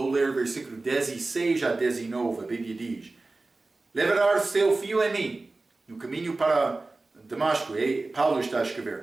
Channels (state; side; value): quieter; left; 3.3 dB